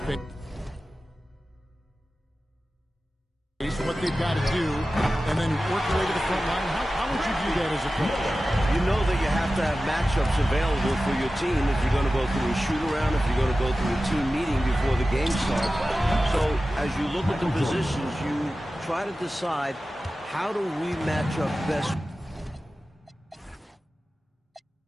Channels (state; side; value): normal; both; correlation 0.95